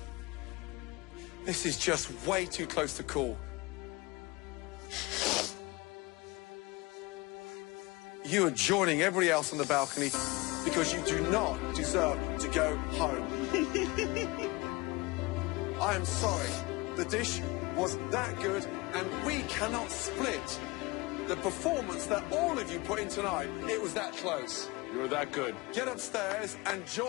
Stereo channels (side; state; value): right; quieter; 23.6 dB